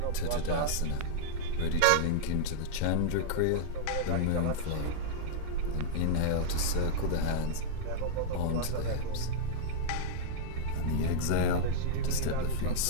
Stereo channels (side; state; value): both; different; correlation -0.02